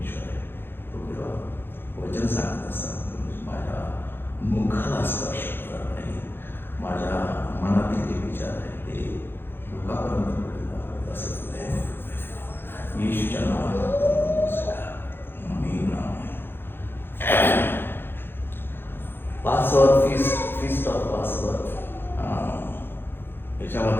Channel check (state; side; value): late; right; 0.10 ms